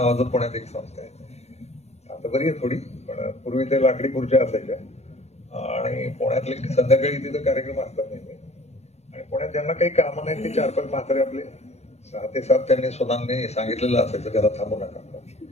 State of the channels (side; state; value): right; late; 0.31 ms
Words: पुण्यात एक संस्था आहे, आता बरी आहे थोडी, पण पूर्वी ते लाकडी खुर्च्या असायच्या. आणि पुण्यातले संध्याकाळी तिथं कार्यक्रम असतात नेहमी. आणि पुण्यात ज्यांना काही कामं नाही ते 4-5 म्हातारे आपले 6 ते 7 त्यांनी स्वतःनी सांगितलेलं असायचं, त्याला थांबू नका.